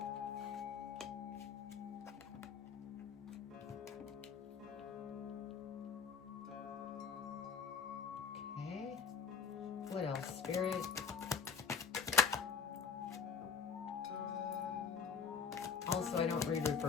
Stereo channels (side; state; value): right; quieter; 6.1 dB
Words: What else, Spirit? Also, I don't read